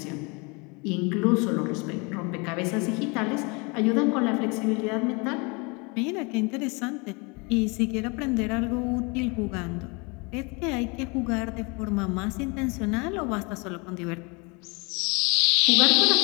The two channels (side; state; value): right; quieter; 29.5 dB